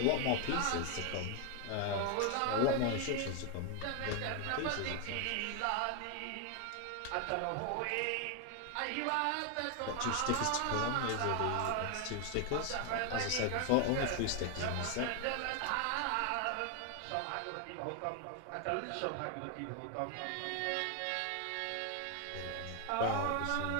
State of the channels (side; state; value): both; different; correlation 0.01